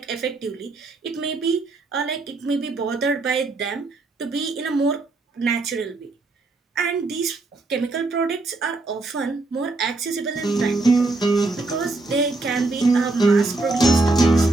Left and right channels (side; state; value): left; quieter; 3.3 dB